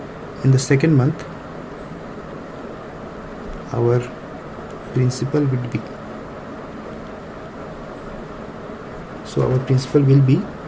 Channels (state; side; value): identical; both; correlation 1.00